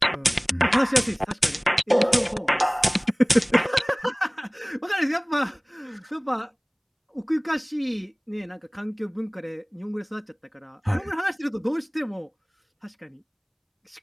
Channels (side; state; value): both; identical; correlation 1.00